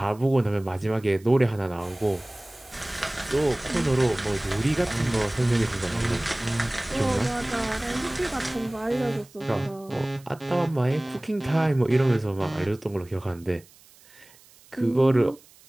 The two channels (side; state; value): right; noise; hiss, 26 dB below the sound